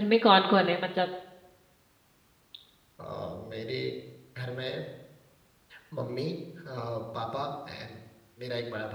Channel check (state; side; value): identical; both; correlation 1.00